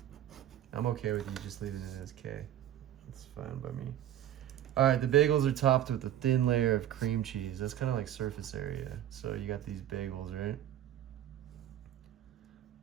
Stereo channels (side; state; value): left; quieter; 11.7 dB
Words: I'm okay with you just leaving it as K. That's fine by me. All right, the bagels are topped with a thin layer of cream cheese. That's kind of like surface area. So you got these bagels, right?